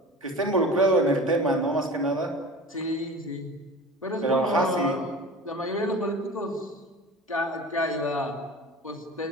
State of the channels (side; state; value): both; normal; correlation 0.36